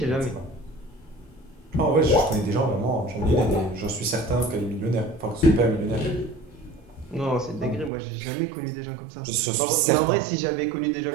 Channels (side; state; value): left; drops out; at 7.9 s